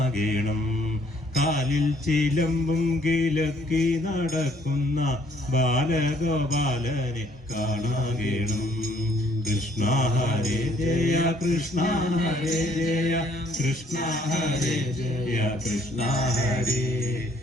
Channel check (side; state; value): both; normal; correlation 0.64